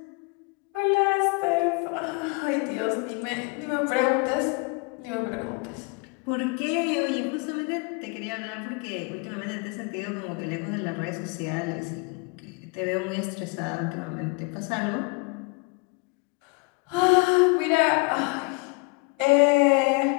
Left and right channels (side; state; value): right; quieter; 28.8 dB